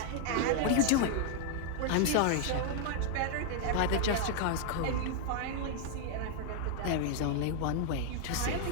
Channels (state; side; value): different; both; correlation 0.00